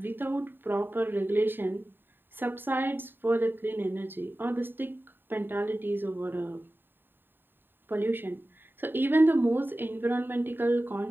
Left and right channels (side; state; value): left; late; 0.096 ms